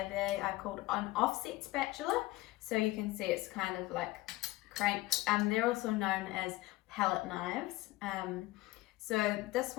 they are called an offset spatula. So you can see it's kind of like cranked. They're also known as palette knives. So this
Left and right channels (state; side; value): quieter; right; 18.8 dB